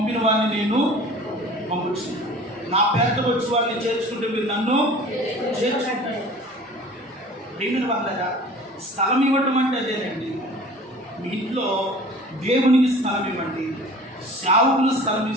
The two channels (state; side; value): normal; both; correlation 0.44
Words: వారిని నేను పంపించు. నా పేరుతో వచ్చి వారిని చేర్చుకుంటే మీరు నన్ను చేర్చుకుంటారు. ప్రియమైన వాళ్ళగా స్థలం ఇవ్వటం అంటే అదేనండి. మీ ఇంట్లో దేవునికి స్థలం ఇవ్వండి. సేవకులు స్థలం